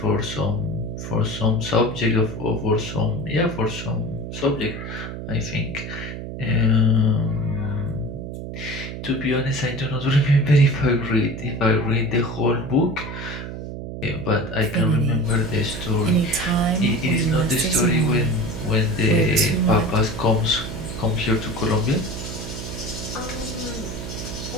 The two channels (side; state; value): right; noise; hum, 8 dB below the sound